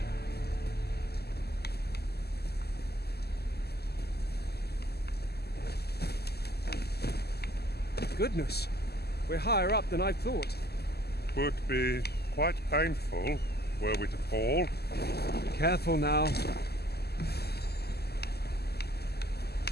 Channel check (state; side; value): late; right; 0.46 ms